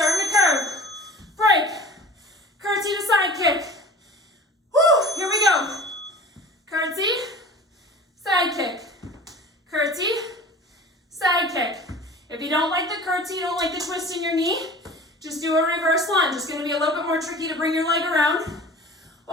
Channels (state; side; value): normal; both; correlation 0.41